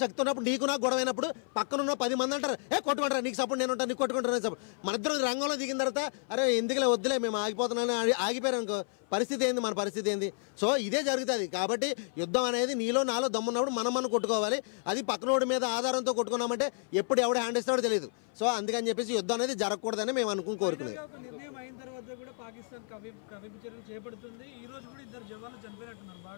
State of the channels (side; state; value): right; silent; 57 dB below the other